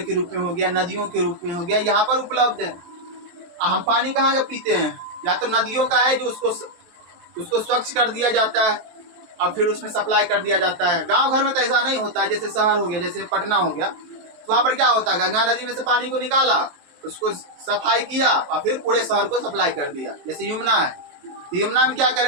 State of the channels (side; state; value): left; late; 23 ms